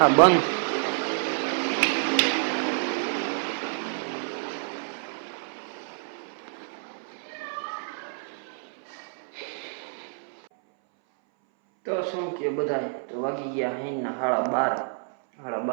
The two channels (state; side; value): silent; left; 59 dB below the other